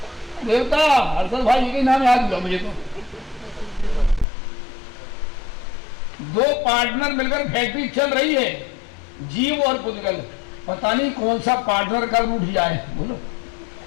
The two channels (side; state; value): right; drops out; at 4.2 s